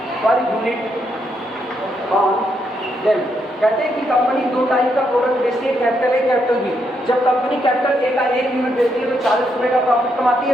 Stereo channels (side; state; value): both; normal; correlation 0.78